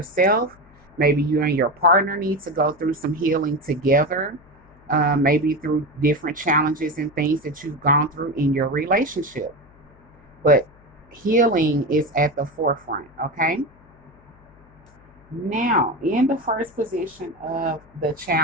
Maybe you and your partner need to go through some healing together. Maybe through different challenges and things that you've gone through in your relationship. But healing is at the forefront, okay? Now, in the first position of the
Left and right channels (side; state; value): left; noise; hum, 27 dB below the sound